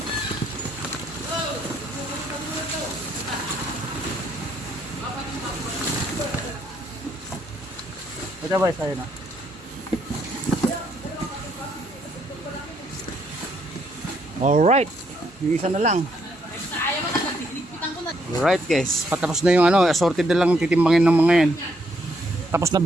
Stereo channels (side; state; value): both; normal; correlation 0.73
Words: Ito ba sa'yo na? Alright, yung isa na lang. Alright guys, patapos na yung assorted na lang titimbangin ng mga yan. Tapos na